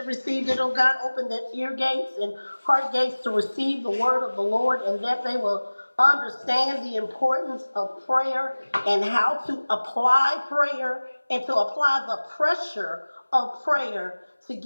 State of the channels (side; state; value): both; inverted; correlation -1.00